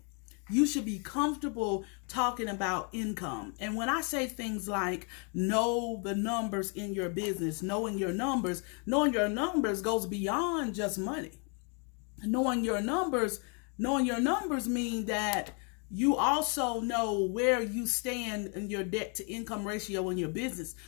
You should be comfortable talking about income. And when I say things like know the numbers in your business, knowing your numbers goes beyond just money. Knowing your numbers mean that you also know where you stand in your debt to income ratio in your business.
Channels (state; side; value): quieter; right; 37.5 dB